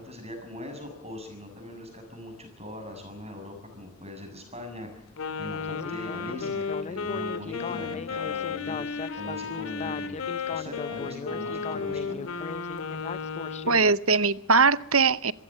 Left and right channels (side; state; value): both; normal; correlation -0.16